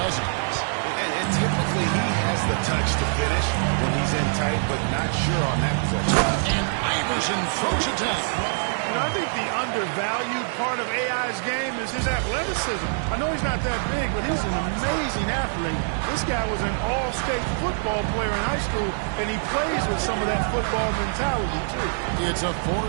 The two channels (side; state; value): left; silent; digital silence